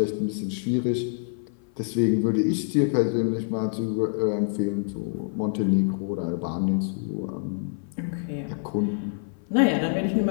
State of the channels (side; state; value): right; silent; 55 dB below the other